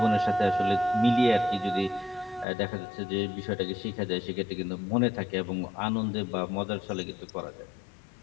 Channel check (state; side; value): drops out; right; at 2.5 s